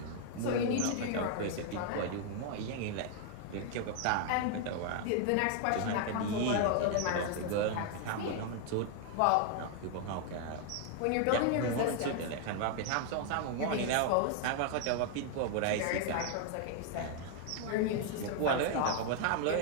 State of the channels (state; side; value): different; both; correlation 0.00